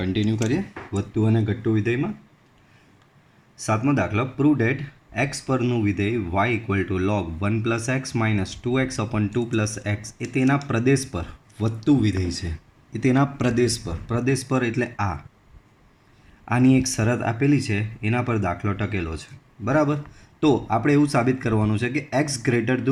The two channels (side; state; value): both; identical; correlation 1.00